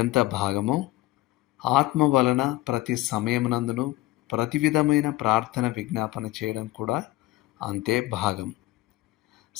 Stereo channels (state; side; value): quieter; right; 17.6 dB